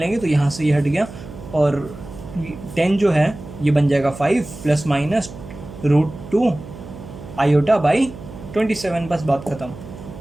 तो यहाँ से ये हट गया, और 10 जो है ये बन जाएगा 5 ± √2 आयोटा बाई 27, बस बात खत्म।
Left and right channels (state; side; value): noise; right; hum, 14 dB below the sound